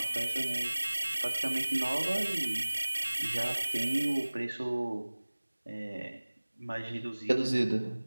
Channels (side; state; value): both; inverted; correlation -1.00